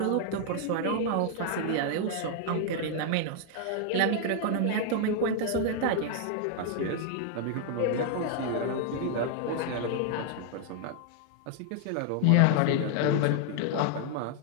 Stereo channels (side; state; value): both; different; correlation 0.00